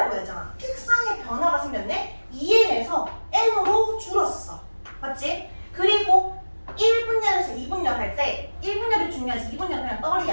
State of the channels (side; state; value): both; inverted; correlation -1.00